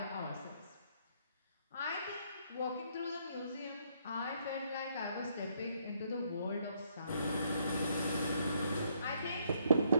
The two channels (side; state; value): both; inverted; correlation -0.70